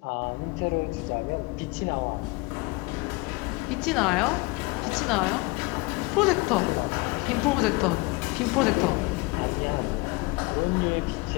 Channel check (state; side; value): quieter; right; 25.2 dB